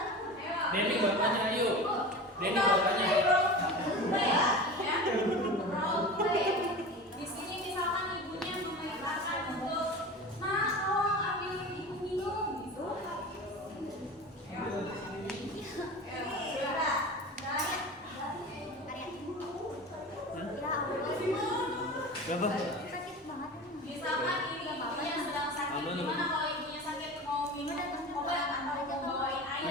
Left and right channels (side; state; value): both; normal; correlation 0.32